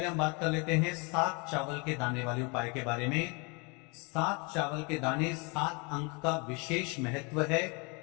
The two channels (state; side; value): quieter; right; 31.0 dB